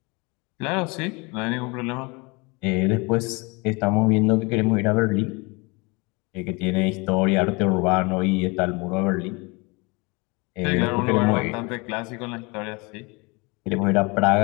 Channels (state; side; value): quieter; right; 27.3 dB